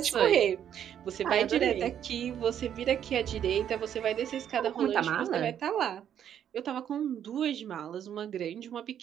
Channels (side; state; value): left; quieter; 9.6 dB